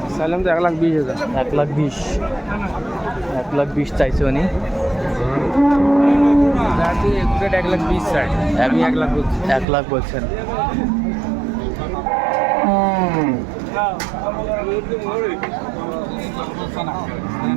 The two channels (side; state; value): left; drops out; at 9.7 s